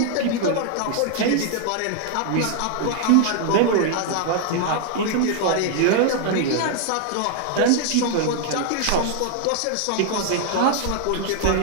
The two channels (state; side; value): different; both; correlation 0.00